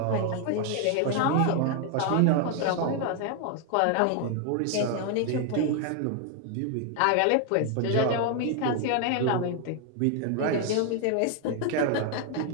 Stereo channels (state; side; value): different; both; correlation 0.00